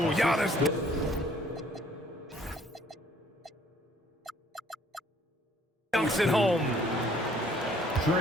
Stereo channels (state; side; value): normal; both; correlation 0.60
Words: Giannis. Dunks it home.